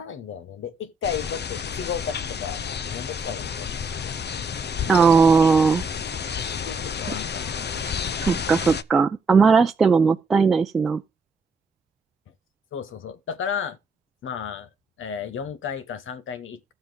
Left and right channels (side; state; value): left; quieter; 3.1 dB